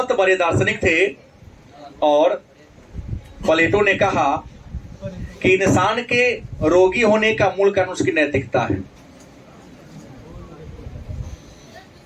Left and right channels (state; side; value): identical; both; correlation 1.00